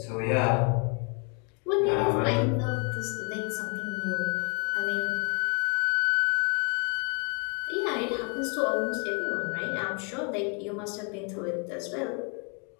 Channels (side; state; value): right; quieter; 35.7 dB